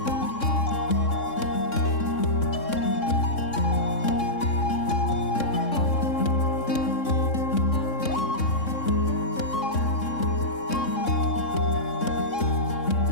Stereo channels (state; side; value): late; right; 3.6 ms